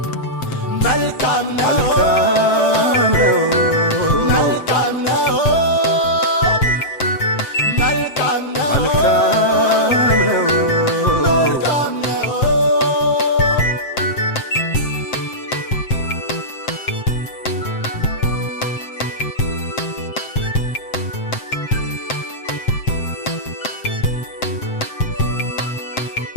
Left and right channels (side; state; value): right; late; 7.7 ms